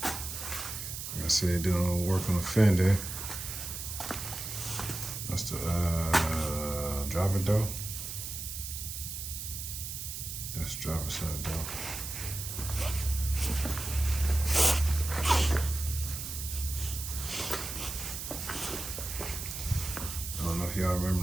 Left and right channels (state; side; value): noise; right; hiss, 6 dB below the sound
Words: Like I said, doing a little work on the fender. That's the driver door. That's driver side door. I don't know if y'all remember